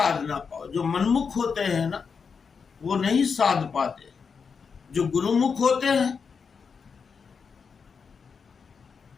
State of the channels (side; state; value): right; quieter; 5.7 dB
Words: ना पाओ। जो मनमुख होते हैं ना, वो नहीं साध पाते। जो गुरुमुख होते हैं,